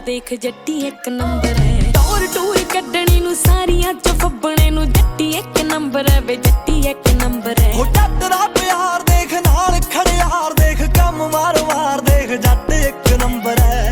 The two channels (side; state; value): both; identical; correlation 1.00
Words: ਦੇਖ ਜੱਟੀ ਇੱਕ ਨੰਬਰ ਹੈ ਟੌਰ ਟੂਰ ਕੱਢਣੀ ਨੂੰ ਸਾਰੀਆਂ ਚ ਫੱਬਣੇ ਨੂੰ ਜੱਟੀ ਇੱਕ ਨੰਬਰ ਹੈ ਵੇ ਜੱਟੀ ਇੱਕ ਨੰਬਰ ਹੈ ਹੋ ਜੱਟ ਦਾ ਪਿਆਰ ਦੇਖ ਨਾਲ ਖੜਿਆਰ ਦੇਖ ਕੰਮ ਵਾਰ-ਵਾਰ ਦੇਖ ਜੱਟ ਇੱਕ ਨੰਬਰ ਹੈ